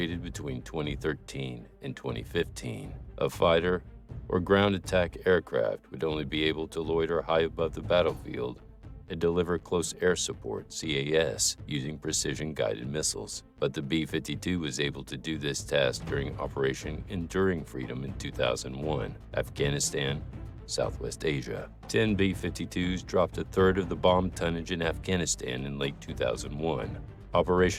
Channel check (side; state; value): both; identical; correlation 1.00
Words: between 2013 and 2015. A fighter or ground attack aircraft would only be able to loiter high above the battlefield and deliver close air support, CAS, using precision-guided missiles. But the B-52 was able to do this task during Operation Enduring Freedom in 2001, Afghanistan, Southwest Asia. 10 B-52s dropped a third of the bomb tonnage in Afghanistan in late 2001,